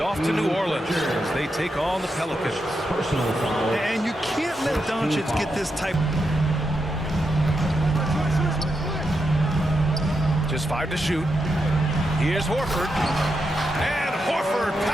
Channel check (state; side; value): normal; both; correlation 0.85